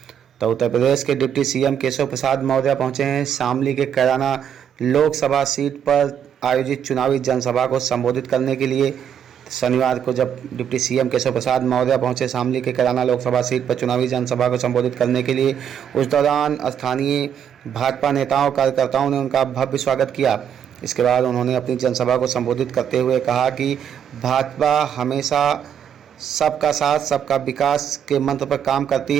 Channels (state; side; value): quieter; left; 8.7 dB